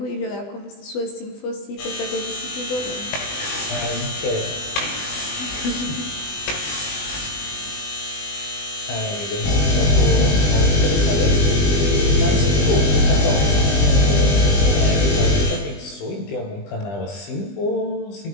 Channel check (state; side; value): late; right; 20 ms